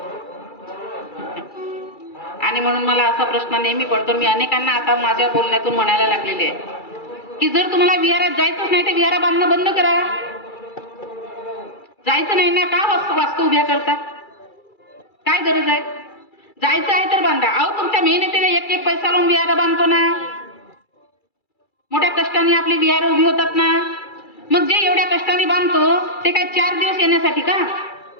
आणि म्हणून मला असा प्रश्न नेहमी पडतो, मी अनेकांना आता माझ्या बोलण्यातून म्हणायला लागलेले आहे की जर तुम्हाला विहारात जायचंच नाही तर विहारा बांधणं बंद करा. जायचं नाही ना, का वास्तू उभ्या करतात? काय गरज आहे? जायचं आहे तर बांधा. अहो, तुमच्या मेहनतीने एक पैसा लावून विहार बांधतो ना, मोठ्या कष्टाने आपली विहार उभी होतात ना. मग जे एवढ्या कष्टाने बांधतो ते काय 4 दिवस येण्यासाठी का?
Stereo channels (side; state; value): right; late; 2.3 ms